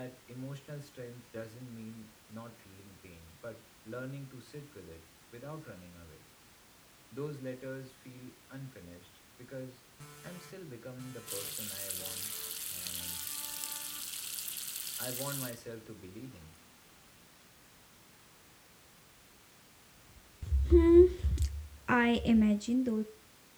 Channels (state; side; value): identical; both; correlation 1.00